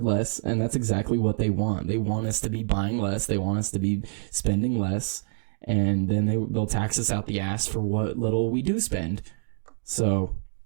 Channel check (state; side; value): silent; left; 61 dB below the other